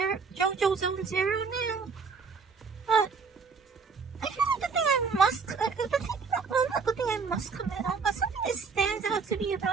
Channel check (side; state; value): left; quieter; 5.2 dB